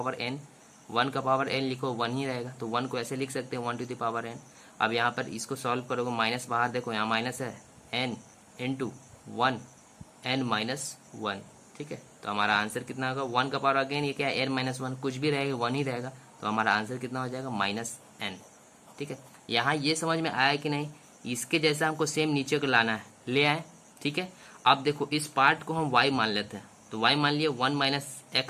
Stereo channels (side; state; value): both; identical; correlation 1.00